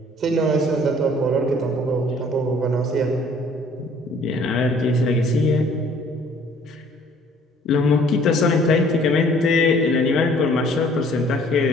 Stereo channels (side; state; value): both; normal; correlation 0.56